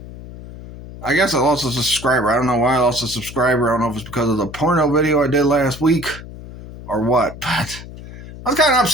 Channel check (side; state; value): left; noise; hum, 14 dB below the sound